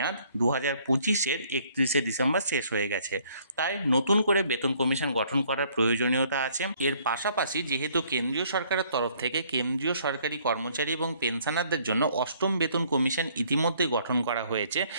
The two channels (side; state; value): both; inverted; correlation -0.62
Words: 2025-এর 31শে ডিসেম্বর শেষ হয়ে গেছে। তাই নতুন করে বেতন কমিশন গঠন করার প্রয়োজনীয়তা আছে। এর পাশাপাশি যেহেতু কেন্দ্রীয় সরকারের তরফ থেকে কেন্দ্রীয় সরকারি কর্মচারী এবং পেনশনারদের জন্য অষ্টম বেতন কমিশন ইতিমধ্যে গঠন করা হয়েছে,